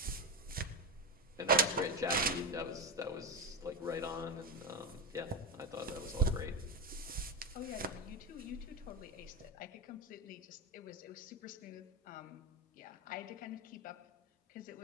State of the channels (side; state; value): both; normal; correlation 0.15